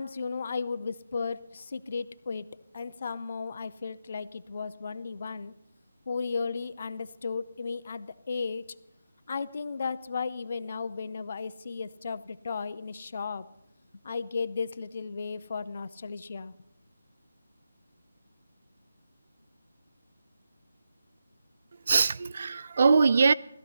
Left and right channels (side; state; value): both; inverted; correlation -0.86